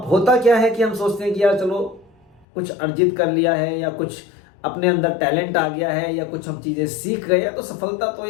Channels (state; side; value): drops out; right; at 2.5 s